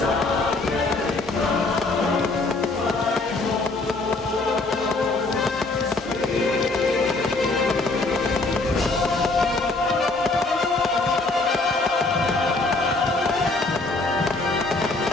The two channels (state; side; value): quieter; right; 3.3 dB